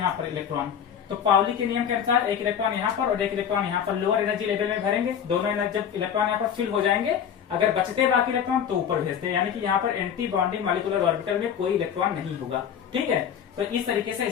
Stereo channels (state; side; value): quieter; right; 8.5 dB